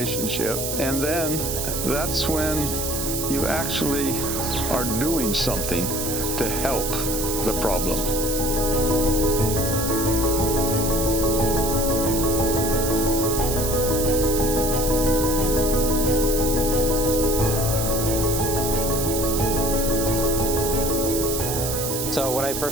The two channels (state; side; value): noise; right; hiss, 3 dB below the sound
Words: and then that's when you actually are doing something to help the problem. So when I